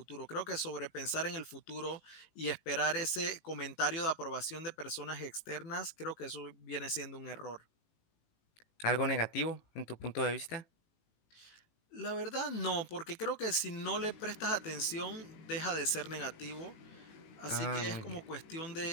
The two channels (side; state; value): right; late; 18 ms